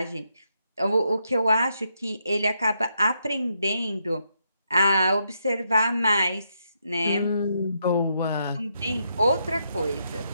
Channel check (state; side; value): inverted; both; correlation -0.79